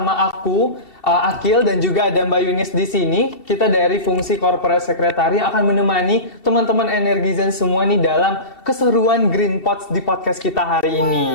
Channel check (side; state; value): right; late; 2.7 ms